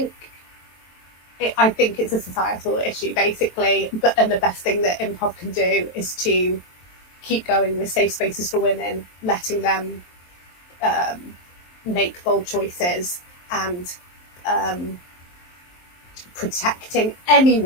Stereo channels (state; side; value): late; right; 23 ms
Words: it's a societal issue, basically. And the best thing that improv can do is to keep going with safe spaces for women, letting them make bold choices, and protecting